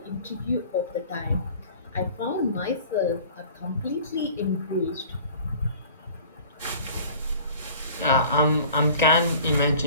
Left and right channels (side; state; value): both; inverted; correlation -0.47